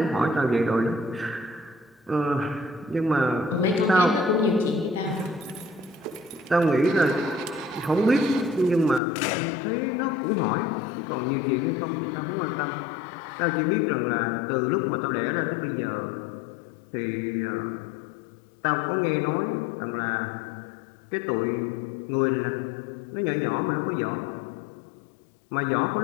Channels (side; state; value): right; drops out; at 9.0 s